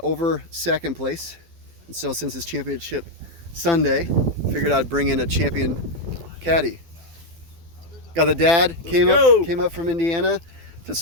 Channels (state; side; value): late; left; 12 ms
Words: second place. And so since it's Championship Sunday, figured I'd bring in a champion caddy. Got the dad, came up from Indiana to